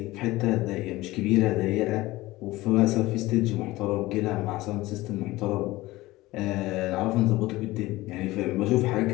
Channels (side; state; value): right; quieter; 18.7 dB